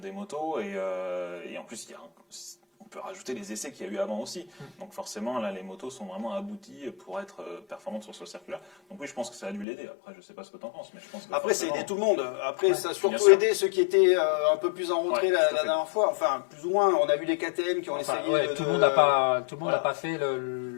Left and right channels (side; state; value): right; drops out; at 9.7 s